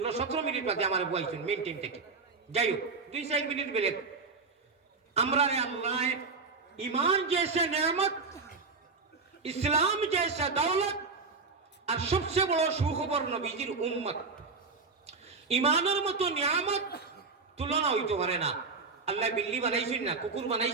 মিনিট বাদে আমার বইছেন মেইন টাইম থেকে যাই হোক 2-4 মিনিট বেলে আমরা আল্লাহ ईमान जैसे नेमत इस्लाम जैसा दौलत और सबसे बड़ा सुखबर नबीजिर उम्मत ईमानर मतो नियामत तुलना হইতে পারে না। আল্লাহ বিল্লি বানাইছেন না, কুকুর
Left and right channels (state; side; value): quieter; left; 4.4 dB